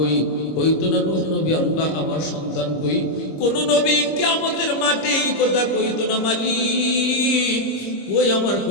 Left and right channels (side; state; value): right; late; 26 ms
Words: কইতো না নূহ নবী আল্লাহ আমার সন্তান কই। কোন নবী কিয়ামতের মাঠে এই কথা কইতো না মালিক ওই আমার